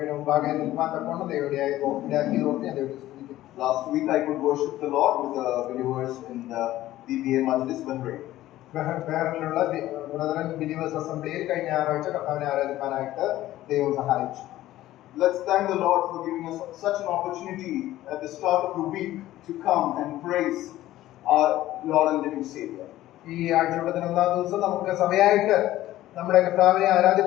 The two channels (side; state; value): right; quieter; 14.9 dB